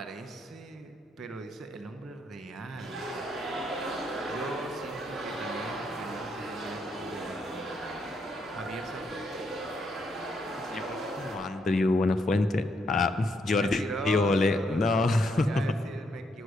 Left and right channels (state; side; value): normal; both; correlation 0.76